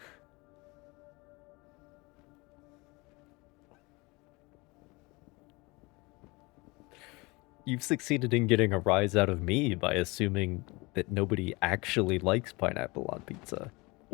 You've succeeded in getting a rise out of me by assuming that nobody actually likes pineapple on pizza.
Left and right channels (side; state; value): right; quieter; 25.0 dB